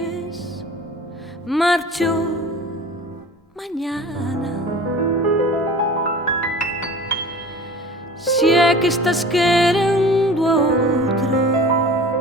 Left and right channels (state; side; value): normal; both; correlation 0.41